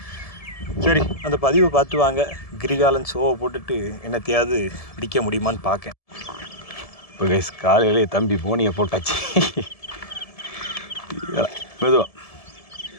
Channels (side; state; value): right; late; 1.7 ms